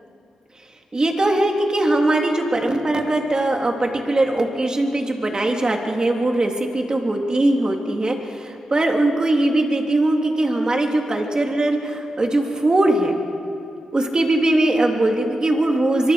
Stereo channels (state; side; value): normal; both; correlation 0.91